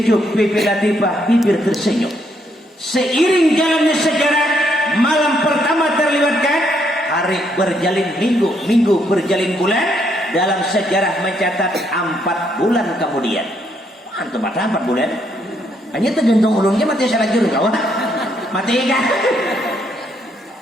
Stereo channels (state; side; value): normal; both; correlation 0.73